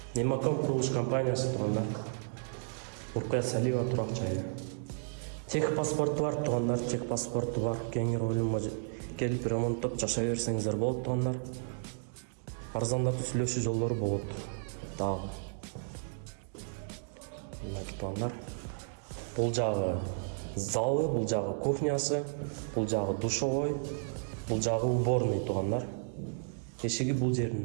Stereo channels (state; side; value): silent; left; digital silence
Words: Эмаком курулуш компаниясы туугандар. Рукая Салиева турак жайы. Тех паспорту бар туугандар, тех паспорту бар. Кеңири ойлонбой келип ремонттоп жашай берсеңиздер болот туугандар. Арзандатуу сүйлөшүү жолдору болот. Дагы. Мынакей туугандар. Бул жагы залы, бул жагы кухнясы, бул жагы душевой, бул жагы уборный туугандар. Эшиги бул